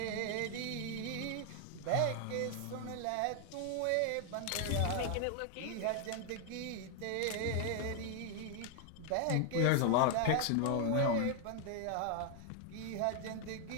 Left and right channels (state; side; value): different; both; correlation 0.00